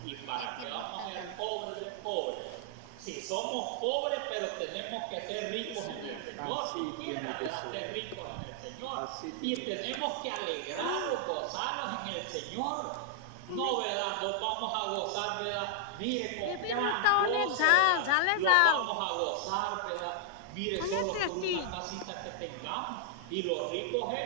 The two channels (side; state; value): both; different; correlation 0.00